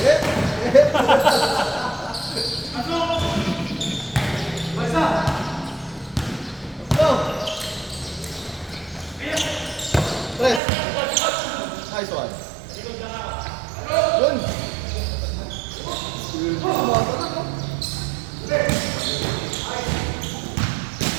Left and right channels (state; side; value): drops out; left; at 10.6 s